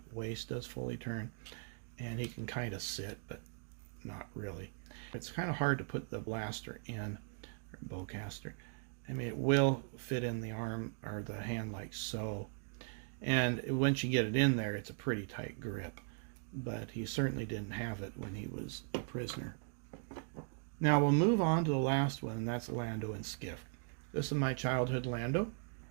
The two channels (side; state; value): left; silent; 52 dB below the other